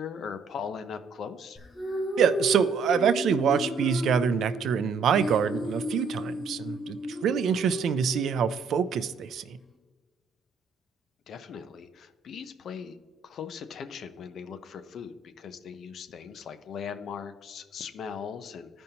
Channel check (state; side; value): quieter; left; 5.0 dB